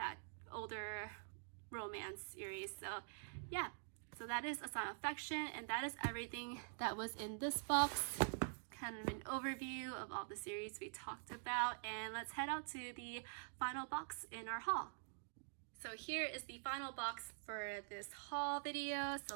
older romance series. So yeah, so that is A Sign of Affection, and that is everything that was in this box. Kind of an overview of all the series we talked about, and let's head out to the final box in our haul. So here is the final box for this haul video.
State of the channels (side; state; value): left; silent; digital silence